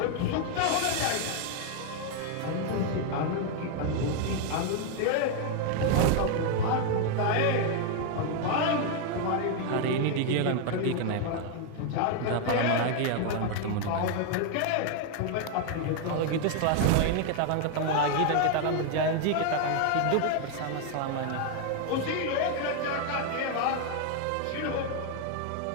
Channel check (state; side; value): different; both; correlation 0.01